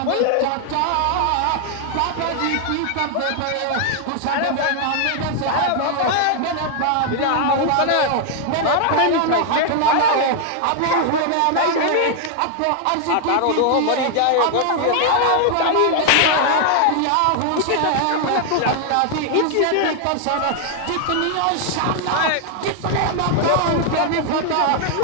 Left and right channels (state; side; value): different; both; correlation 0.00